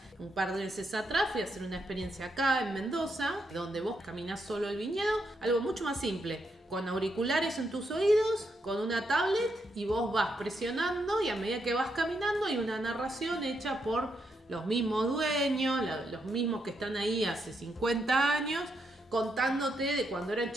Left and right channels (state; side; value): normal; both; correlation 0.80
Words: Un par de veces atrás fui a hacer una experiencia acá en Mendoza, donde vos caminás solo el viñedo, algo mucho más simple, con auriculares en tus oídos, con una tablet, y vos vas presionando, y a medida que vas caminando hay una narración hecha por los mismos dueños, los mismos que están ahí hace 50 años, contándote de cuando eran